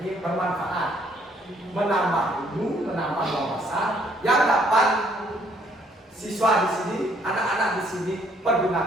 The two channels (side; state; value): both; normal; correlation 0.65